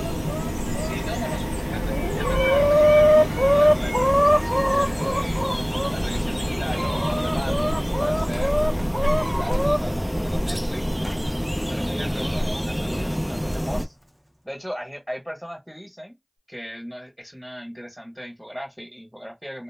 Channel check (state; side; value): identical; both; correlation 1.00